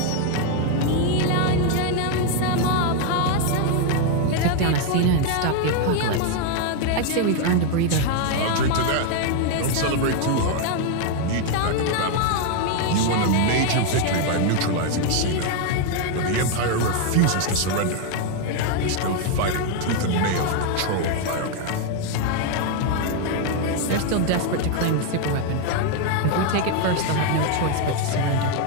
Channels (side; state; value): both; different; correlation 0.01